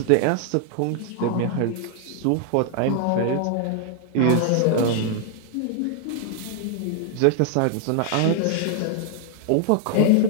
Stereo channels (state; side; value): different; both; correlation 0.00